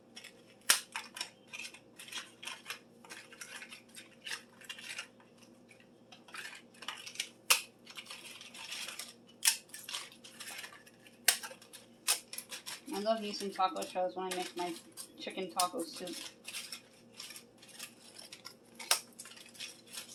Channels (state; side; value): identical; both; correlation 1.00